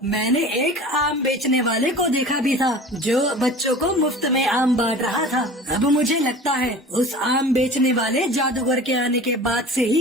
मैंने एक आम बेचने वाले को देखा भी था, जो बच्चों को मुफ्त में आम बांट रहा था। अब मुझे लगता है उस आम बेचने वाले जादूगर के आने के बाद से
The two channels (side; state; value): both; normal; correlation 0.40